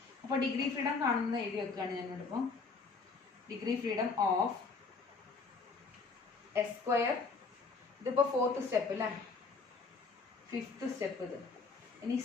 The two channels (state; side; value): quieter; right; 4.6 dB